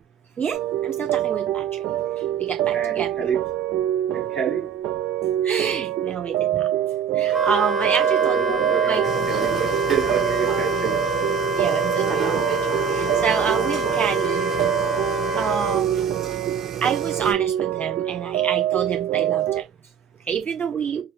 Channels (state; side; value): quieter; left; 7.0 dB